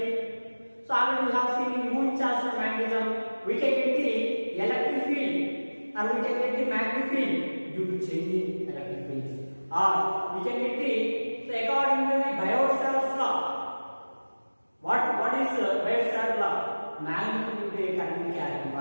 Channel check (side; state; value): both; inverted; correlation -1.00